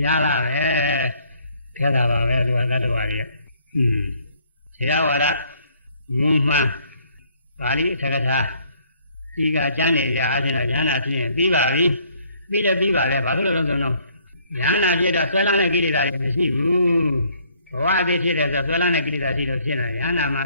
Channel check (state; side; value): inverted; both; correlation -0.64